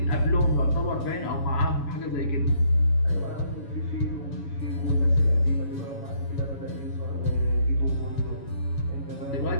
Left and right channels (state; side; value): late; right; 7.1 ms